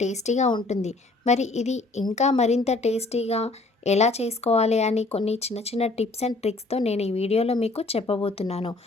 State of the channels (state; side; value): quieter; right; 3.2 dB